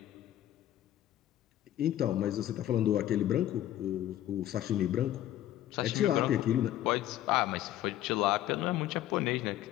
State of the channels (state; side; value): quieter; right; 13.0 dB